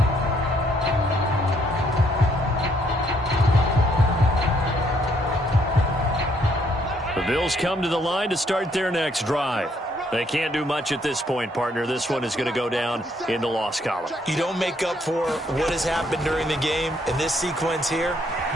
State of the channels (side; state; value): both; normal; correlation 0.69